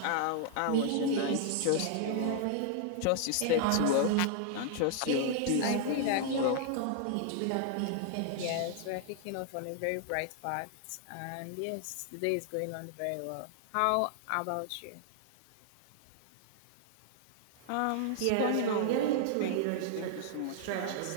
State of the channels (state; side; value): different; both; correlation 0.00